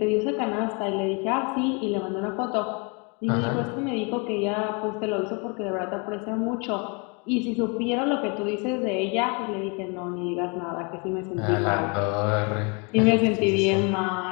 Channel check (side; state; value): right; quieter; 32.8 dB